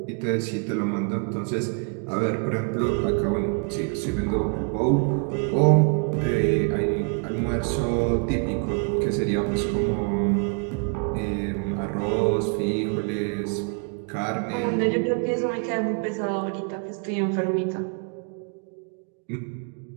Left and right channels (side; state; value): left; quieter; 38.0 dB